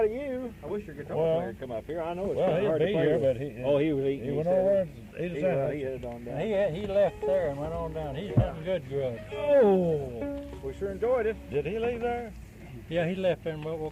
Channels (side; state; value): both; identical; correlation 1.00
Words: of you. I wish your guitar player would come up here. I know it's kind of hard to play here, with. But he was eating. He went over and ate his sandwich. He headed on down. He left there and went on down. He's hunting good grub. Oh, we sure enjoyed it. Did he leave there? Yeah, he left there and